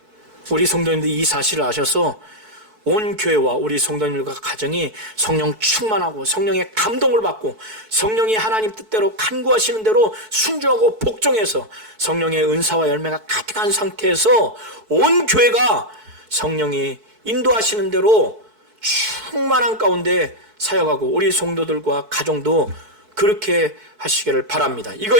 우리 성도님들이 이 사실을 아셔서 온 교회와 우리 성도님들과 가정이 성령 충만하고 성령의 감동을 받고 성령이 하나님 뜻대로 간구하시는 대로 순종하고 복종해서 성령의 은사와 열매가 가득한 상태에서 온 교회가 성령이 인도하시는 대로 충만한 가운데 사역하고 우리 성도들과 가정도 그렇게 하시기를 바랍니다.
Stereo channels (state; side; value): late; left; 4.6 ms